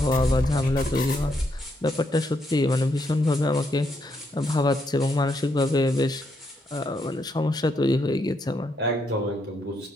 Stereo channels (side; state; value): both; normal; correlation 0.77